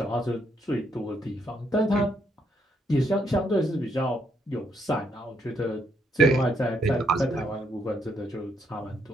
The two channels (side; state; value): both; normal; correlation 0.74